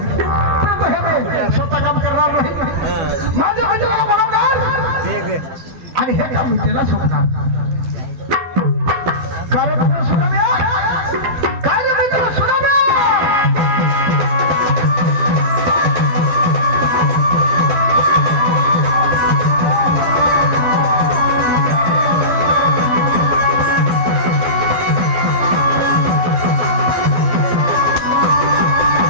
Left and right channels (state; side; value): late; left; 12 ms